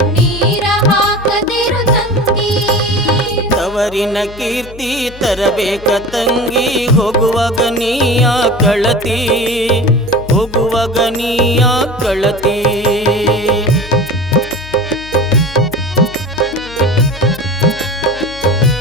ಹಾಕದಿರು ತಂಗಿ ತವರಿನ ಕೀರ್ತಿ ತರಬೇಕ ತಂಗಿ ಹೋಗುವಾಗ ನೀಯ ಕಳತಿ ಹೋಗುವಾಗ ನೀಯ ಕಳತಿ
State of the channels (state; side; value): noise; left; hum, 17 dB below the sound